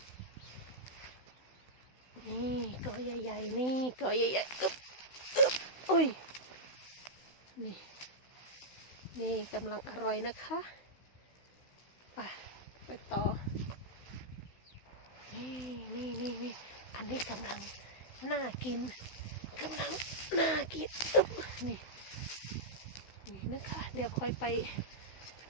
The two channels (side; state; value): right; late; 16 ms